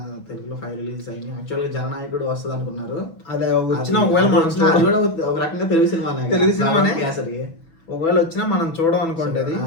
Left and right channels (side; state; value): right; late; 6.1 ms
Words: తెలుగులో 5 రిలీజెస్ అయినాయి. యాక్చువల్గా జననాయకుడు వస్తుంది అనుకున్నారు. అదే వచ్చినా ఒకవేళ మనం అది కూడా ఒక రకంగా తెలుగు సినిమానే. తెలుగు సినిమానే. కేసరి ఒకవేళ వచ్చినా మనం చూడం అనుకోండి. అది